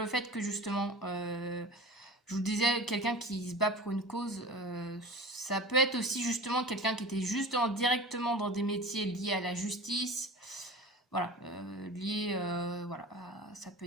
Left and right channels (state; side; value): normal; both; correlation 0.35